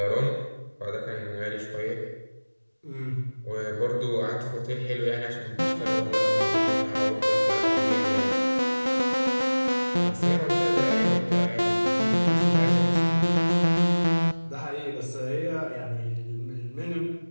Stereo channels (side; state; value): both; inverted; correlation -1.00